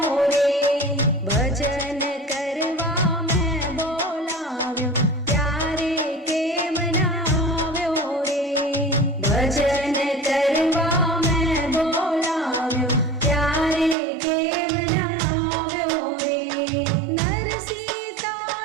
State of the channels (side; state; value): left; drops out; at 14.0 s